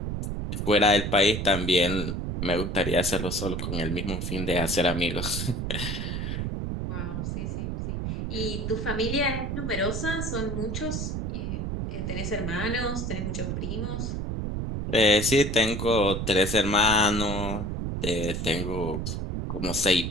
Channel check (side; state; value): right; noise; rumble, 3 dB below the sound